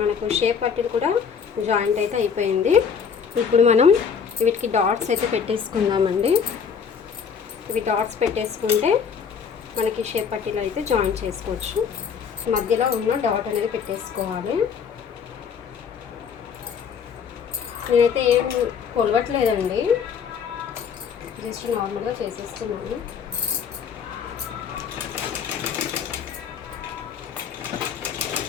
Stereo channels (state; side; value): quieter; right; 6.7 dB